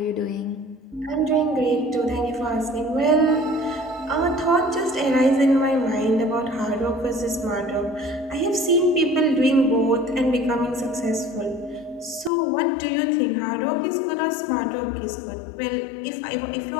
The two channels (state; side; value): drops out; right; at 12.3 s